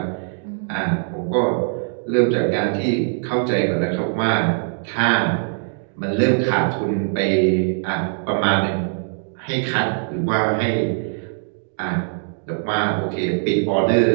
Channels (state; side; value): silent; left; digital silence